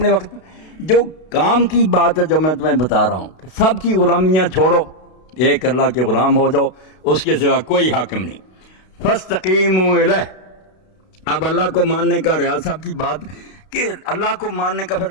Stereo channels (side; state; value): right; late; 32 ms